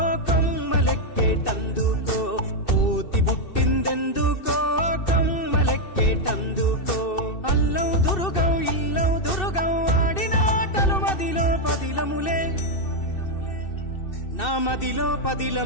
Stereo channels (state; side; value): late; right; 2.6 ms